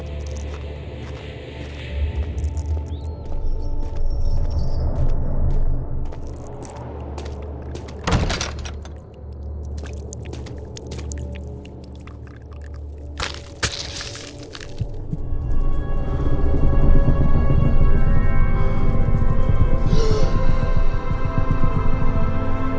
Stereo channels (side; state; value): both; identical; correlation 1.00